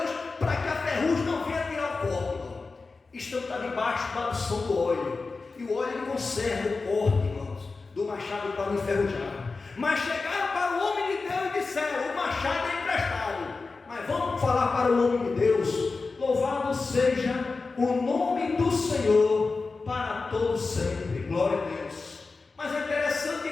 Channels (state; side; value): quieter; right; 4.0 dB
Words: para que a ferrugem não venha tirar o corte, irmão. Está debaixo da unção do óleo, e o óleo conserva o corte, irmãos, do machado para não enferrujar. Mas chegaram para o homem de Deus e disseram: o machado é emprestado. Mas vamos falar para o homem de Deus: louvado seja o nome do Senhor para todos sempre. Glória a Deus. Mas é interessante